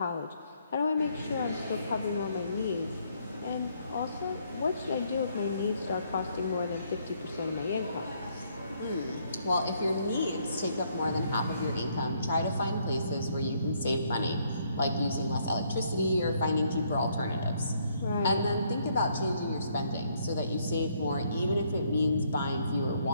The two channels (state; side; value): inverted; both; correlation -0.70